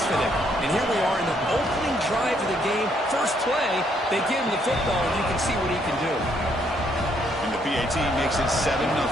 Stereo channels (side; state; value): both; normal; correlation 0.70